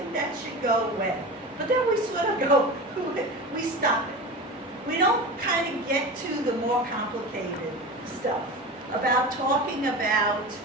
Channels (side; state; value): both; normal; correlation 0.29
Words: that should go away. But then we sort of go, we stop it. We don't kind of get to the more complicated stuff about talking about,